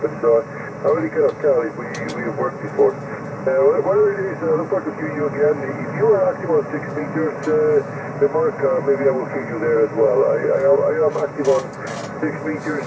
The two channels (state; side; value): identical; both; correlation 1.00